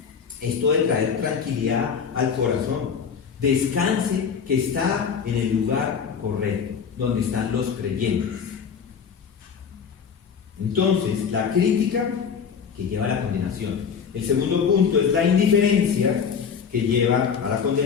Esto de traer tranquilidad al corazón. Descanse que está en el lugar correcto, donde están los creyentes. Entonces, la crítica que lleva a la condenación. El segundo punto es la indiferencia que lleva a la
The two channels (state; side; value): quieter; right; 6.7 dB